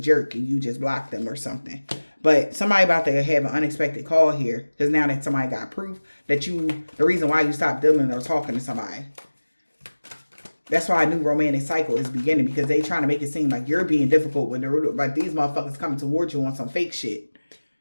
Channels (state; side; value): inverted; both; correlation -1.00